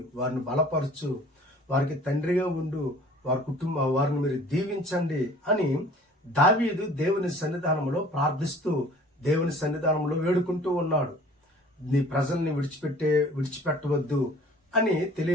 వారిని బలపరచు, వారికి తండ్రిగా ఉండు, వారిని మీరు దీవించండి అని దావీదు దేవుని సన్నిధానంలో ప్రార్థిస్తూ దేవుని సన్నిధానంలో వేడుకుంటూ ఉన్నాడు. నీ ప్రజల్ని విడిచిపెట్టవద్దు అని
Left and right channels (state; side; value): normal; both; correlation 0.49